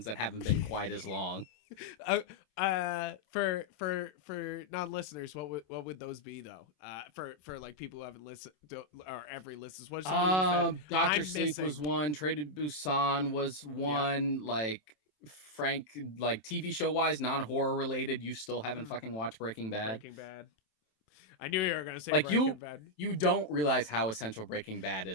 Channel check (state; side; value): late; right; 27 ms